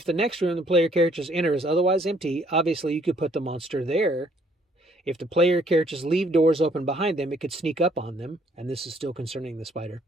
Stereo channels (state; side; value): normal; both; correlation 0.64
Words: the next room the player characters enter is otherwise empty, obviously you could put the monster there. If the player characters leave doors open behind them, it could sneak up on them, and this is still concerning the spider.